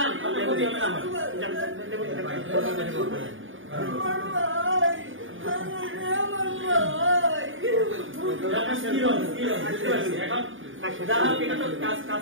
আপনার ক্ষতি হবে না আমার। কাজ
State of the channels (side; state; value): left; late; 0.57 ms